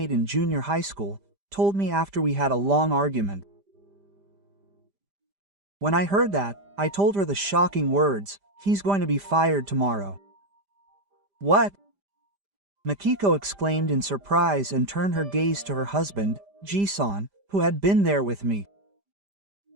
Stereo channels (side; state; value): left; late; 5.0 ms